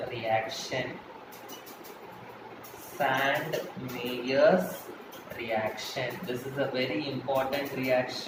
reaction. Sand-Meyer's reaction. This is a very important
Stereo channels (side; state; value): both; identical; correlation 1.00